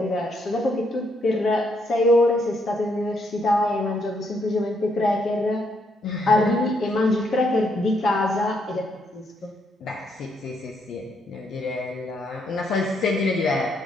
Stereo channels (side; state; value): both; normal; correlation 0.75